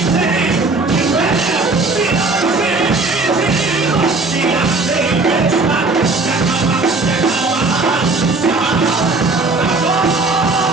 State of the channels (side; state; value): left; quieter; 3.5 dB